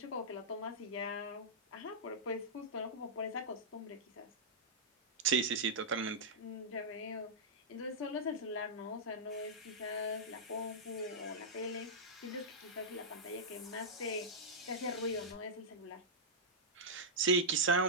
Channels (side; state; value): both; normal; correlation -0.11